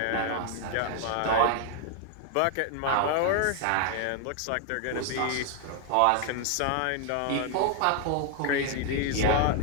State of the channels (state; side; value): different; both; correlation 0.00